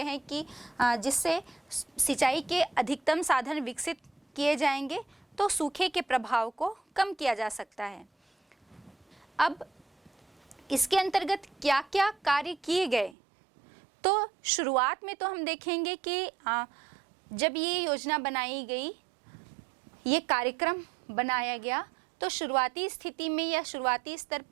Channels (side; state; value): left; drops out; at 13.2 s